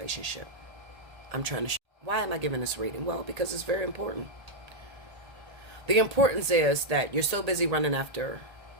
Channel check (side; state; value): left; late; 1.8 ms